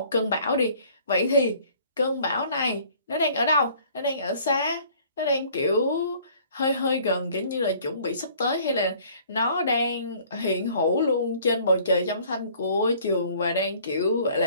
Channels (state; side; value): inverted; both; correlation -0.55